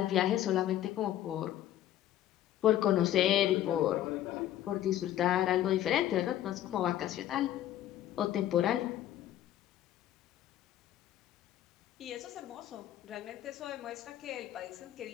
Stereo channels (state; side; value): quieter; right; 12.5 dB